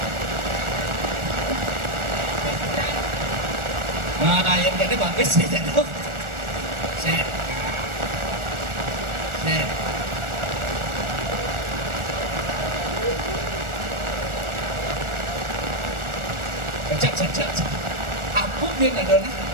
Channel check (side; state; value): left; late; 1.4 ms